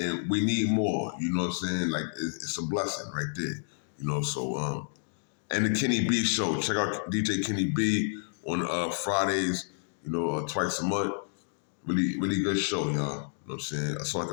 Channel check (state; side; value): silent; right; digital silence